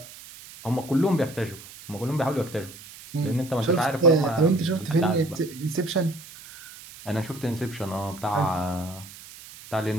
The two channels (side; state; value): right; noise; hiss, 17 dB below the sound